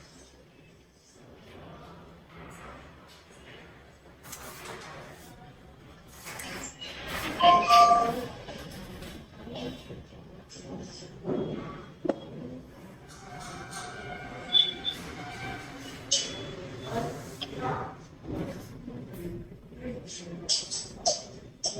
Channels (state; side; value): identical; both; correlation 1.00